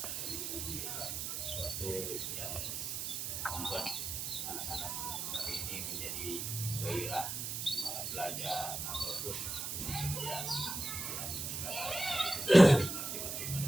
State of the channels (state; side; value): noise; right; hiss, 3 dB below the sound